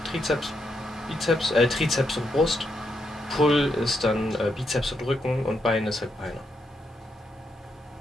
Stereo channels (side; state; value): both; normal; correlation 0.80